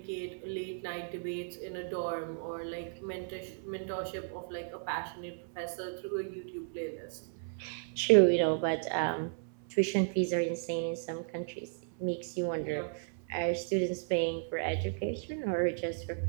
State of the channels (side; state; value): left; silent; 55 dB below the other